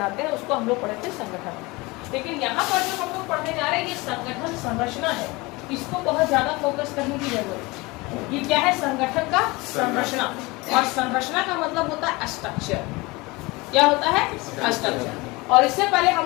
हैं, उसको हम लोग पढ़ते हैं संगठन। लेकिन यहाँ पर जो हम लोग पढ़ने जा रहे हैं ये संगठन संरचना है, इसको बहुत ज्यादा फोकस करने की जरूरत है। ये क्या है? संगठन का संरचना। और संरचना का मतलब होता है स्ट्रक्चर। क्या होता है? स्ट्रक्चर। और इससे पहले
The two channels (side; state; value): right; quieter; 23.6 dB